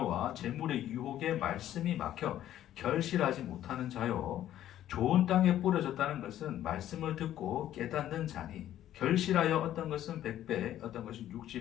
재물의 유혹에 말씀이 막혀 결실하지 못하는 자요. 좋은 땅에 뿌려졌다는 것은 말씀을 듣고 깨닫는 자니 결실하여 어떤 것은 100배, 어떤 것은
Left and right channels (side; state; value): right; quieter; 12.2 dB